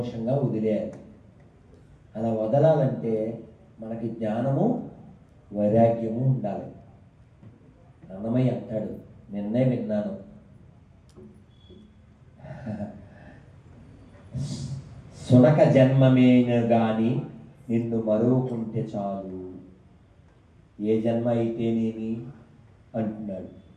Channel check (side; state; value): both; identical; correlation 1.00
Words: వదిలేయాలి. అలా వదలాలంటే మనకి జ్ఞానము వైరాగ్యము ఉండాలి. అన్నమయ్య అంటాడు, నిన్నే విన్నాను, సునక జన్మమేన గాని నిన్ను మరువకుంటే చాలు, ఏ జన్మ అయితేనేమి అంటున్నాడు.